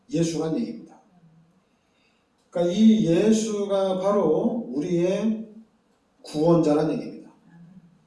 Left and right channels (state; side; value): identical; both; correlation 1.00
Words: 예수란 얘기입니다. 그러니까 이 예수가 바로 우리의 구원자란 얘기입니다.